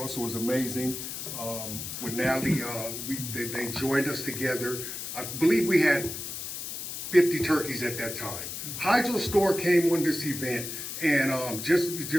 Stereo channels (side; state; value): left; noise; hiss, 7 dB below the sound